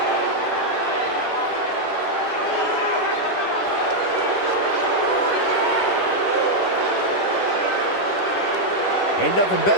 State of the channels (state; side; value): late; right; 10 ms